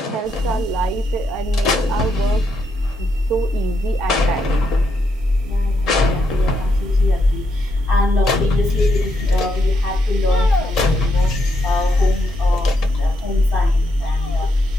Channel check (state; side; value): normal; both; correlation 0.79